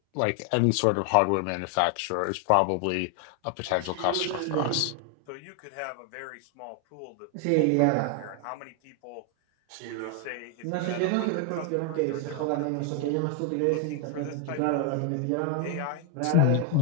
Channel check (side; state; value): both; different; correlation 0.01